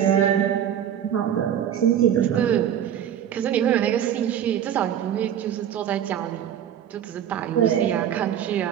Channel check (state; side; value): quieter; left; 9.9 dB